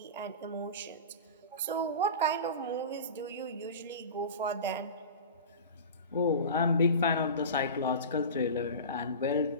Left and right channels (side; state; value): both; inverted; correlation -0.32